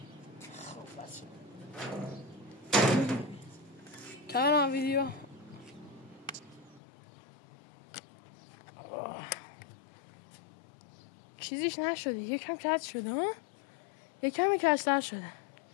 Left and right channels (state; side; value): drops out; right; at 6.8 s